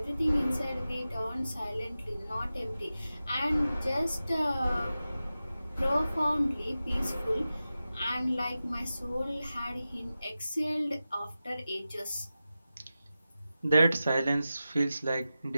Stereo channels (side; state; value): both; inverted; correlation -0.94